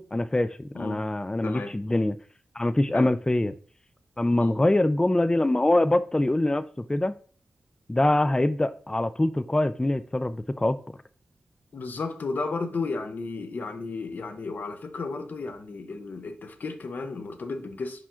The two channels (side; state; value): both; normal; correlation 0.98